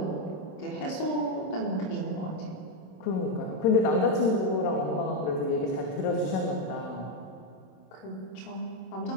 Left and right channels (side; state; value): right; late; 27 ms